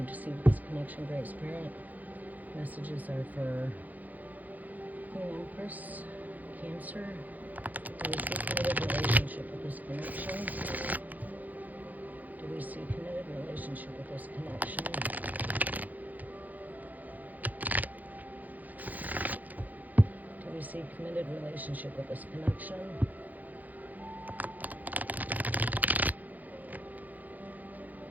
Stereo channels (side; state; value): left; late; 0.081 ms